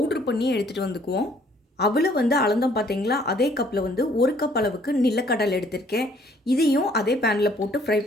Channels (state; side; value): normal; both; correlation 0.61